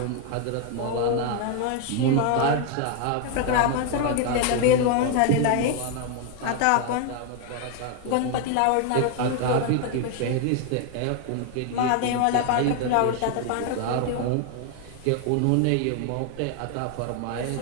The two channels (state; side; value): different; both; correlation 0.01